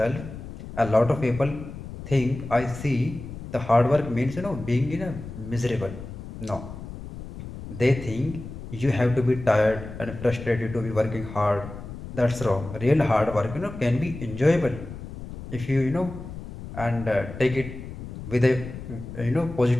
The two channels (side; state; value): left; noise; rumble, 11 dB below the sound